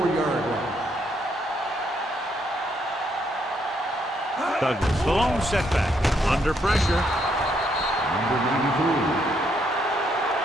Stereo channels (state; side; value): normal; both; correlation 0.74